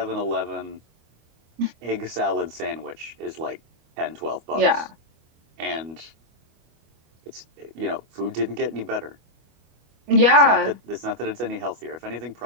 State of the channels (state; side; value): late; left; 25 ms